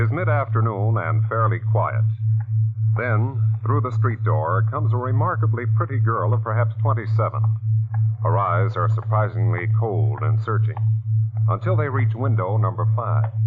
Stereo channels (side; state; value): both; identical; correlation 1.00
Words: mid-afternoon and fairly quiet. Then, through the street door, comes a remarkably pretty girl of perhaps 27. Her eyes are surprisingly cold and searching, until they reach window number 5.